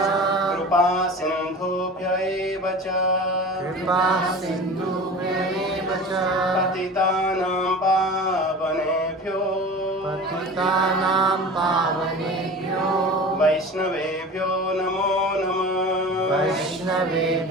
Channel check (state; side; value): normal; both; correlation 0.36